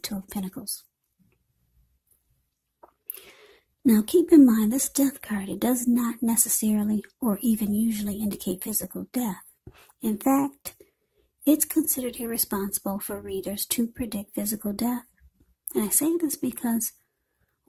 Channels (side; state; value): both; identical; correlation 1.00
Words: of Pentacles. Now keep in mind, this Death card, it does not necessarily or even usually indicate physical death. In fact, it's considered irresponsible for readers to predict physical death. And I say this because